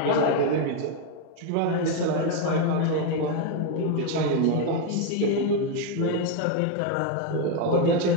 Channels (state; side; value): different; both; correlation 0.02